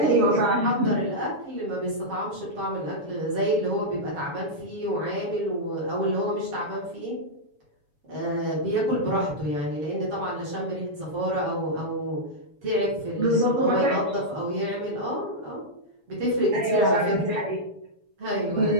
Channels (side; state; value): left; late; 7.1 ms